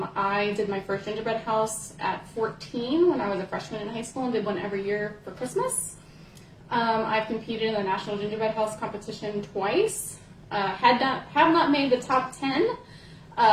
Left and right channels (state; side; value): identical; both; correlation 1.00